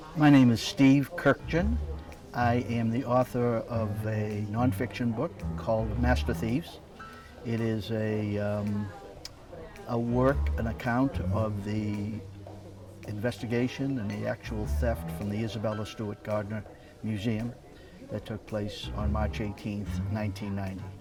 my name is Steve Kurkjian. I am the author of a nonfiction book called Master Thieves. It is a work, an account of the investigation and the actual theft from the Isabella Stewart Gardner Museum that took place on March 18th, 1990.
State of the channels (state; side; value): identical; both; correlation 1.00